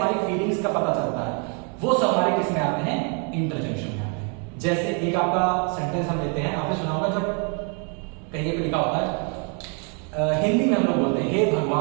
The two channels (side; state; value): left; quieter; 37.7 dB